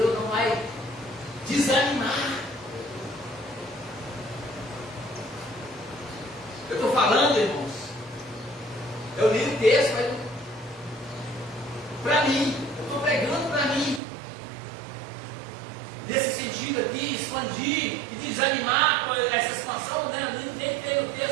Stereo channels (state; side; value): drops out; left; at 14.0 s